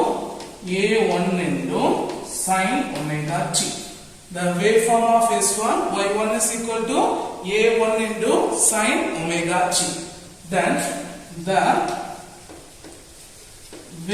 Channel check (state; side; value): identical; both; correlation 1.00